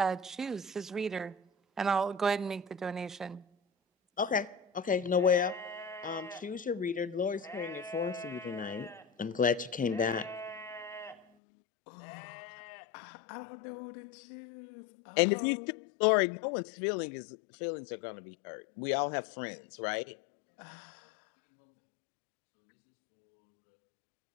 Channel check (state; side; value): drops out; right; at 11.2 s